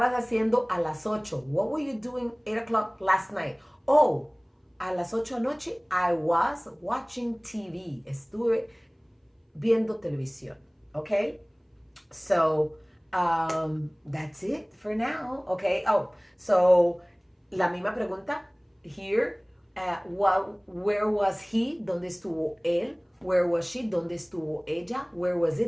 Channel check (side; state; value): both; identical; correlation 1.00